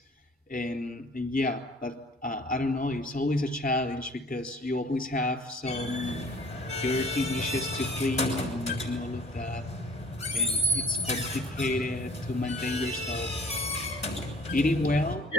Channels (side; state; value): both; normal; correlation 0.53